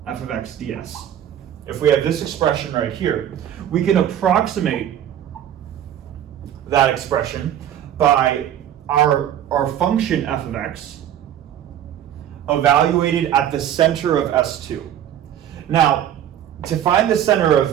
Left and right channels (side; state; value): left; quieter; 10.7 dB